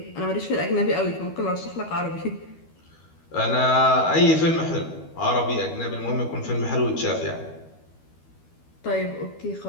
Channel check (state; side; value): late; right; 12 ms